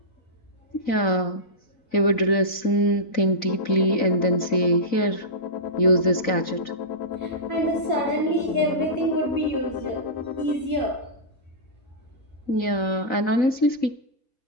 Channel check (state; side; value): late; right; 4.0 ms